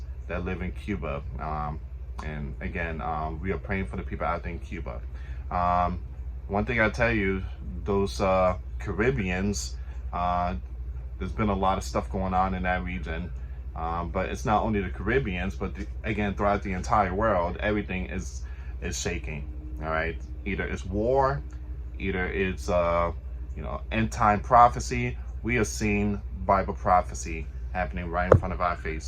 that live in Cuba. And again, we are praying for the people out there in Cuba. One thing I tell you, those Caribbeans, there's been a lot of stuff going on in that region. But it's not only the Caribbeans, but again, throughout the entire world, everything is shaking. All right, either it's war, either it's end time prophecy. We are seeing Bible prophecy happening right in front of our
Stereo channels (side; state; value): both; identical; correlation 1.00